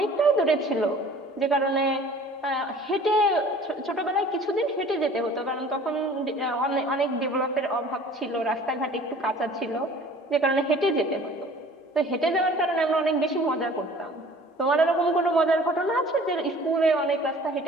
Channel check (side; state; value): both; normal; correlation 0.49